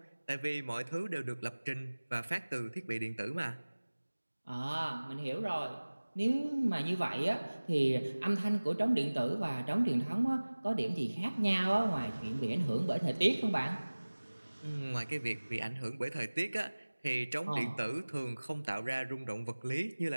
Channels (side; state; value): both; inverted; correlation -1.00